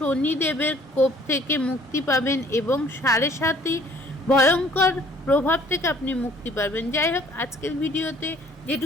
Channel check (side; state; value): both; normal; correlation 0.57